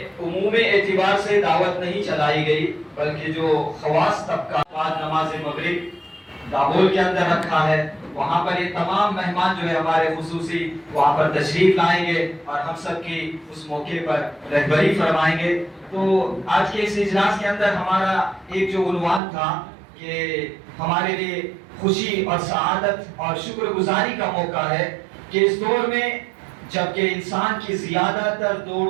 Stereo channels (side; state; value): left; drops out; at 19.2 s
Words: عمومی اعتبار سے دعوت نہیں چلائی گئی، بلکہ جو خواص طبقہ بعد نماز مغرب دابول کے اندر رکھا ہے وہاں پر یہ تمام مہمان جو ہے ہمارے خصوصی وہاں پر تشریف لائیں گے اور ہم سب کی اس موقع پر رہبری فرمائیں گے. تو آج کے اس اجلاس کے اندر ہمارا ایک جو عنوان تھا کہ ہمارے لیے خوشی اور سعادت اور شکر گزاری کا موقع ہے کہ اس دور میں جبکہ انسان کی زیادہ تر